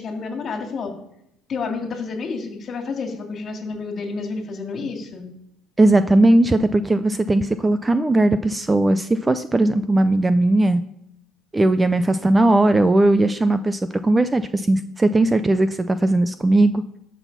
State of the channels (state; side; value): normal; both; correlation 0.93